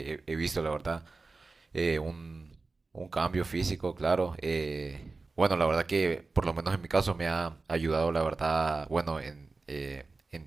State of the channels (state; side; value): quieter; left; 3.8 dB